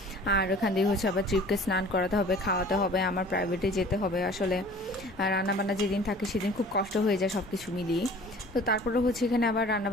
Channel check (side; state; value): both; normal; correlation 0.47